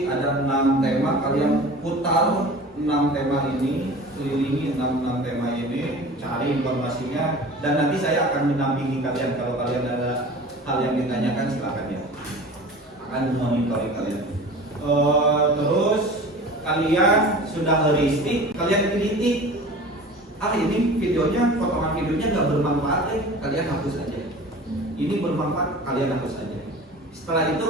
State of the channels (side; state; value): both; normal; correlation 0.39